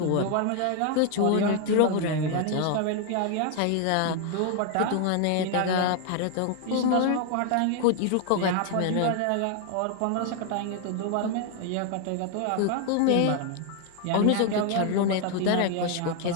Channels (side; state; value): both; different; correlation 0.00